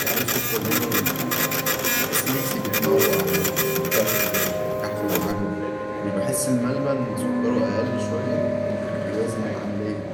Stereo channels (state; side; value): identical; both; correlation 1.00